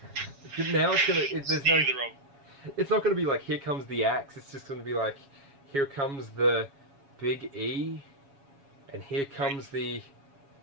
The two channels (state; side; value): late; left; 7.2 ms